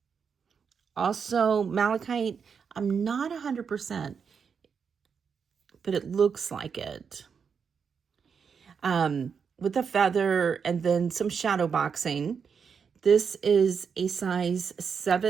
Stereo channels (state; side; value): quieter; left; 6.3 dB